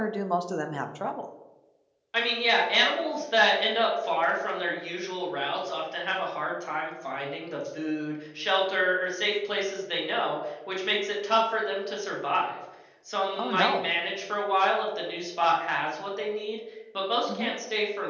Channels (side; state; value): both; identical; correlation 1.00